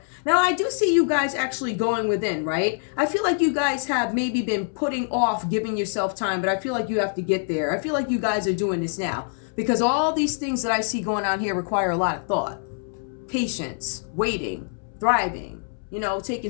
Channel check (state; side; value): silent; right; 62 dB below the other